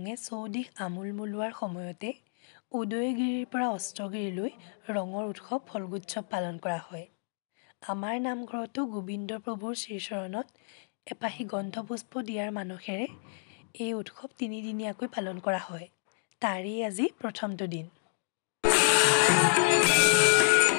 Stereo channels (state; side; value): silent; right; digital silence